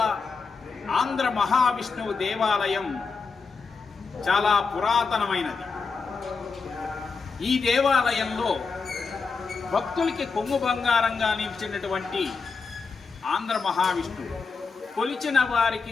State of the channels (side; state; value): right; quieter; 4.8 dB